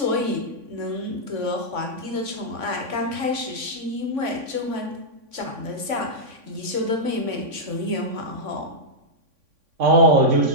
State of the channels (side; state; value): left; late; 3.5 ms